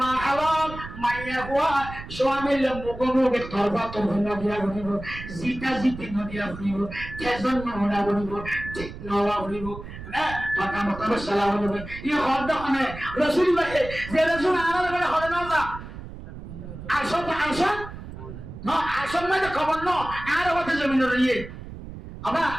মা হালাল মাইয়া হওয়া স্বামীর মুগমুগে তরবা তরবা দিয়া বলিব জিতা জিতি নদিয়া বলিব তেজন নহনা বলিব ঠিক নওয়া বলিব না কথা মোতাবেক সালাম বলিব ই হদ দখনে রসুল ভাই যে রসুল আনার বেলা হবে না আসন আসন না আসন মানে খবর ন আর হতে জমিন রইয়ে আবা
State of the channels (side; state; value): right; noise; rumble, 12 dB below the sound